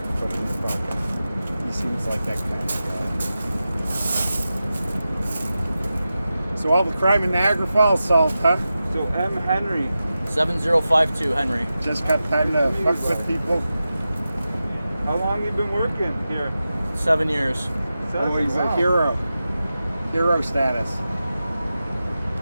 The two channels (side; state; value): both; inverted; correlation -0.93